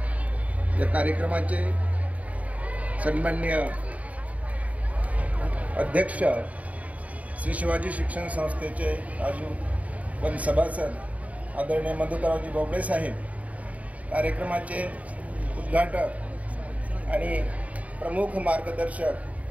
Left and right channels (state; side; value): late; left; 0.069 ms